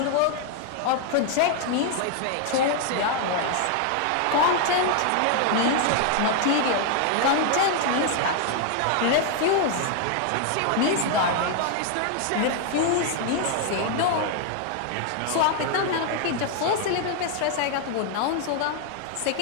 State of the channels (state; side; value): different; both; correlation 0.00